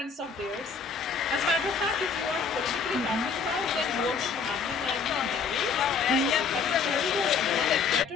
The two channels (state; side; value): quieter; right; 5.5 dB